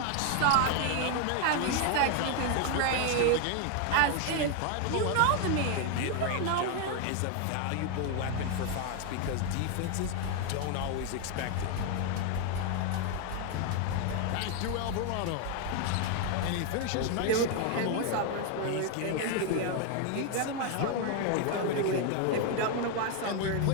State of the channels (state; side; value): different; both; correlation 0.01